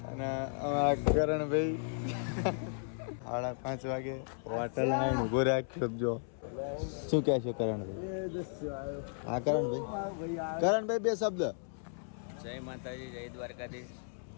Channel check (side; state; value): right; silent; 55 dB below the other